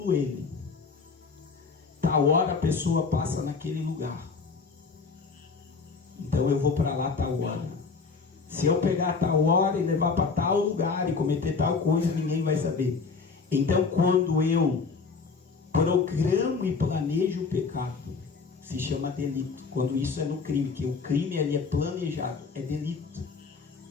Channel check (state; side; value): quieter; right; 4.8 dB